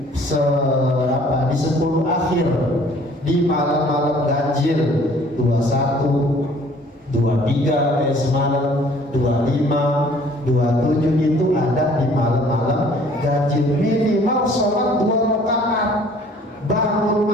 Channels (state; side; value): normal; both; correlation 0.55